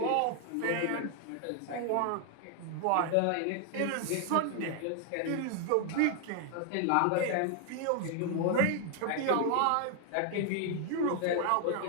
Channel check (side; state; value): both; different; correlation 0.00